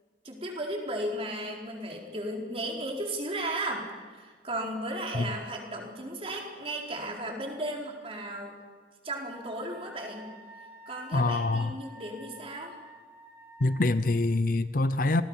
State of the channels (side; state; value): both; normal; correlation 0.54